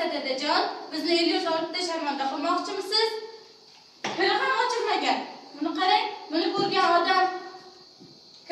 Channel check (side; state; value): both; identical; correlation 1.00